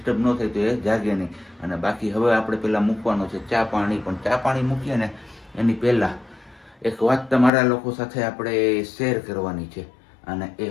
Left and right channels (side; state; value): right; drops out; at 7.5 s